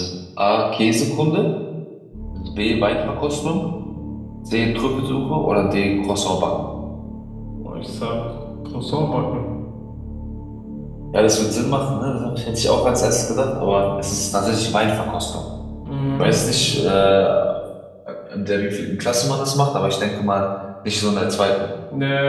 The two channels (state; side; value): identical; both; correlation 1.00